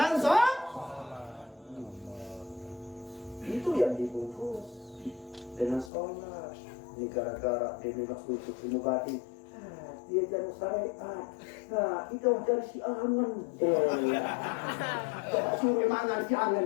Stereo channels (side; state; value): right; drops out; at 5.9 s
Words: sholat. Itu yang dibungkus dengan sholat. Ini gara-gara dia memang khusus ilmu batin. Dia jangan syariat. Nah, itu dari si angan. Coba suruh mangan si angan